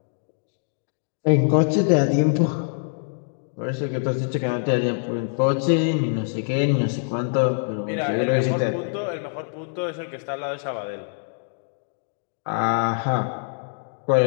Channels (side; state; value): right; silent; digital silence